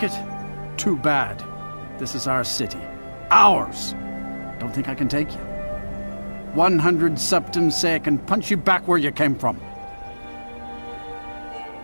it? Too bad. This is our city. Ours! Don't think I can take you? 100 septims say I can punch you back where you came from.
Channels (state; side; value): inverted; both; correlation -1.00